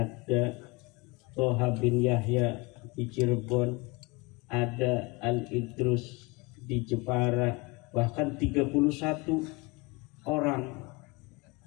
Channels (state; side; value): quieter; right; 26.3 dB